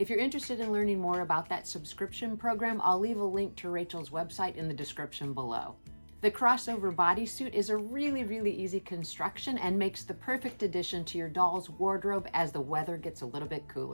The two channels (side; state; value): both; inverted; correlation -1.00